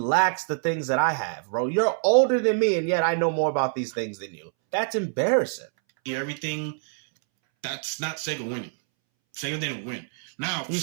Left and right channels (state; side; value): silent; left; 61 dB below the other